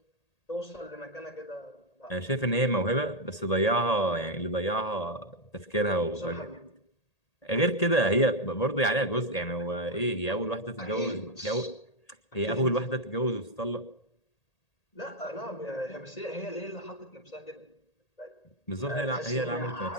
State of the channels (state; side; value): late; right; 1.8 ms